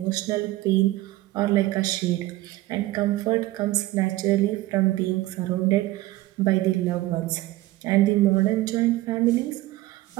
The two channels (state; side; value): quieter; left; 17.5 dB